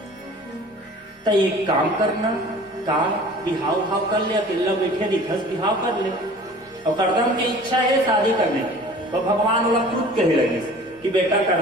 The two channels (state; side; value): normal; both; correlation 0.45